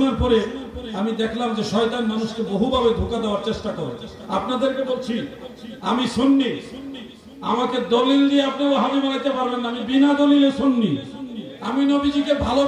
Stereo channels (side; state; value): both; identical; correlation 1.00